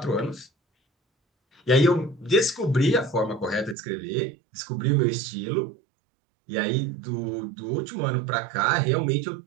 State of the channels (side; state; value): left; drops out; at 3.8 s